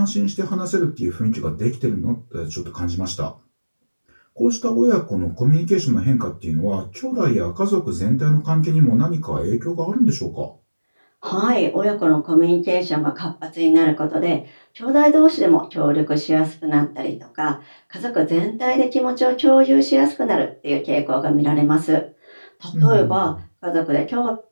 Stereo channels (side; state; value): both; inverted; correlation -1.00